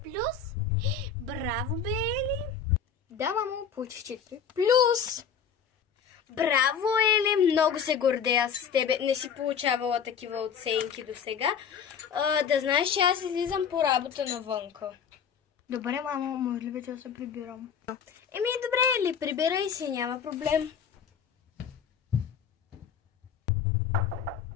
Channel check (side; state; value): right; quieter; 7.1 dB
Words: плюс? Браво, бе, Ели. Да, мамо, получих 4 плюс. Браво, Ели, много се гордея с тебе. Не си получавала такива оценки до сега. Да знаеш, че аз излизам по работа навънка. Добре, мамо, може ли вече да се прибирам? Еми, добре, Ели, прибирай се, няма проблем.